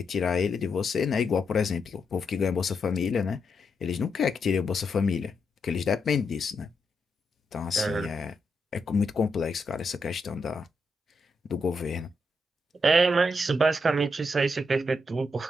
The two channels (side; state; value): both; normal; correlation 0.81